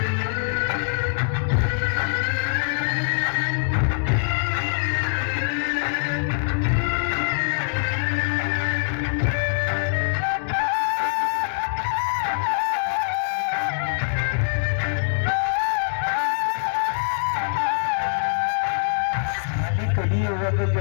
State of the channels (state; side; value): silent; right; digital silence